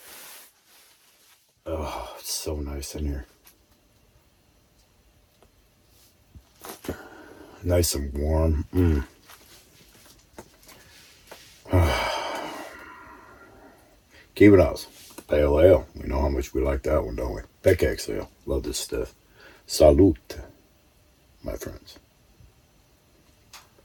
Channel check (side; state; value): both; identical; correlation 1.00